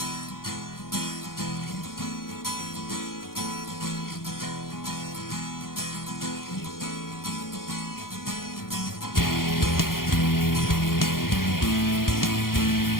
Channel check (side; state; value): right; late; 0.92 ms